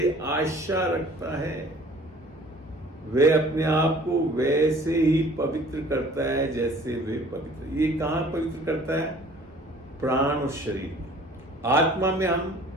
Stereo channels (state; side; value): normal; both; correlation 0.51